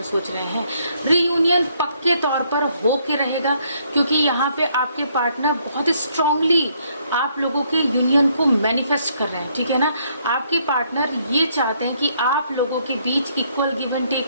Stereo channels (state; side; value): inverted; both; correlation -0.69